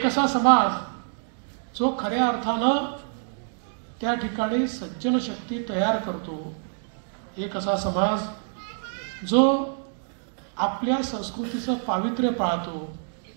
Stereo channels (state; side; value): silent; left; digital silence